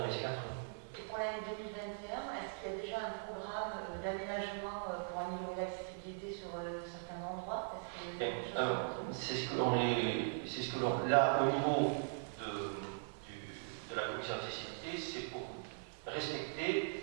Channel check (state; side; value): silent; left; 51 dB below the other